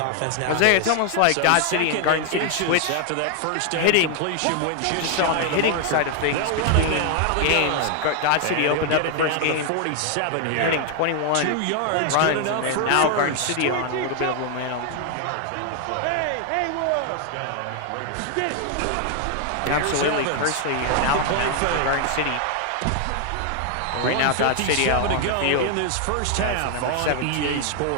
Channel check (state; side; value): different; both; correlation 0.00